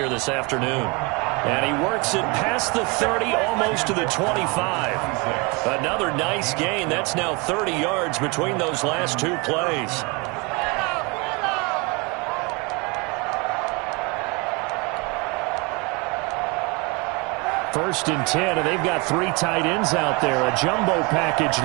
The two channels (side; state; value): left; quieter; 28.6 dB